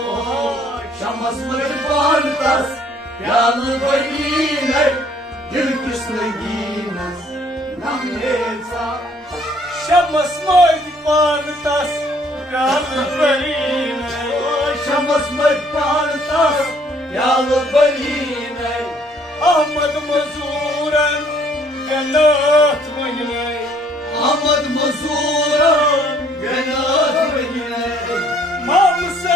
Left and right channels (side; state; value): both; normal; correlation 0.62